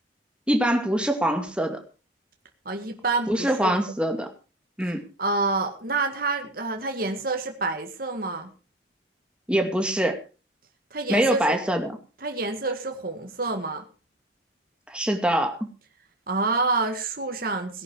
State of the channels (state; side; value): normal; both; correlation 0.38